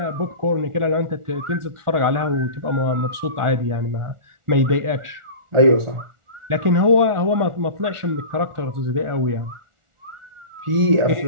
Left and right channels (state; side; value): late; left; 1.4 ms